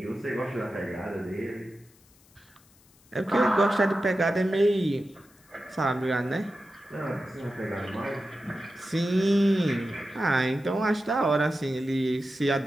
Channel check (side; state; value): left; noise; hiss, 30 dB below the sound